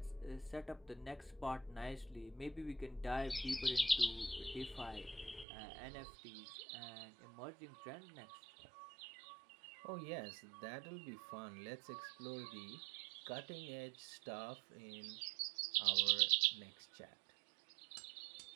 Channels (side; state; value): left; drops out; at 5.5 s